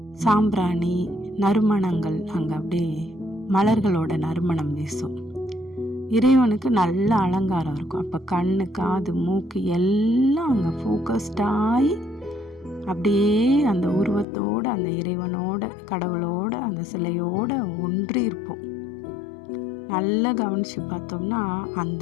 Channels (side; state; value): right; drops out; at 14.2 s